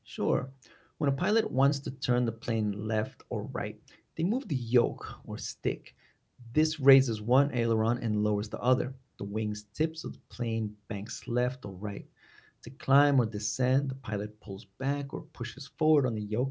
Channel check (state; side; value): identical; both; correlation 1.00